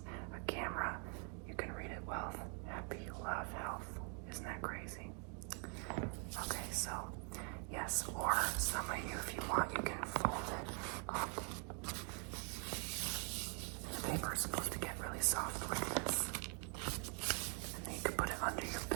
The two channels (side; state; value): left; quieter; 39.1 dB